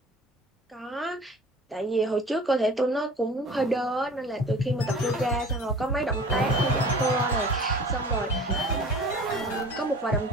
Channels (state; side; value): normal; both; correlation 0.43